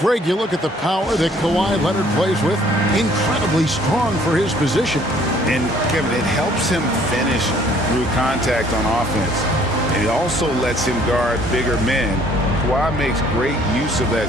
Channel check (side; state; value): both; normal; correlation 0.59